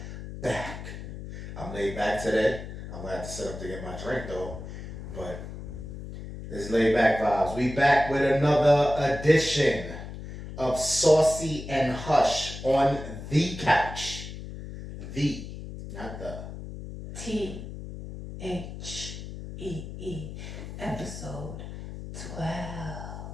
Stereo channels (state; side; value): noise; left; hum, 10 dB below the sound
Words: back. I'm laid back today. I'm gonna have to sit up to get my drink though. But it's laid back vibes. We back with another edition of Saucy and Hush on the couch. The, not the. THEE, episode 12.